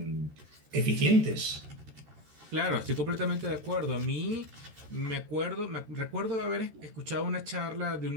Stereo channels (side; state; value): left; late; 13 ms